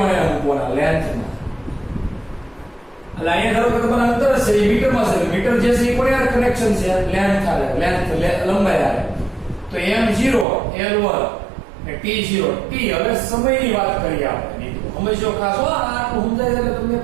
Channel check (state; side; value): drops out; left; at 10.5 s